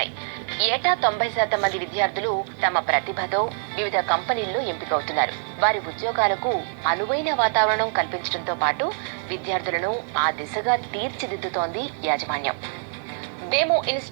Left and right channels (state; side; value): silent; left; 62 dB below the other